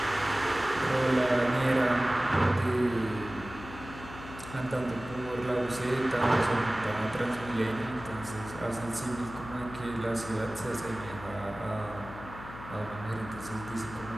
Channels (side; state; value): left; noise; hum, 13 dB below the sound